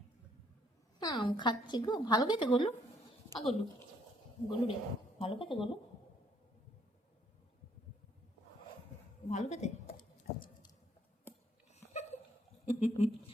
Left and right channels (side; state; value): both; normal; correlation 0.68